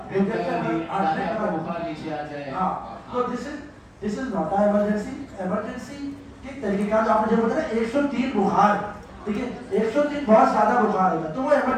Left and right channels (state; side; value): identical; both; correlation 1.00